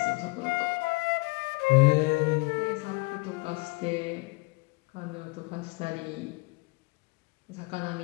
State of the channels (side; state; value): right; quieter; 28.0 dB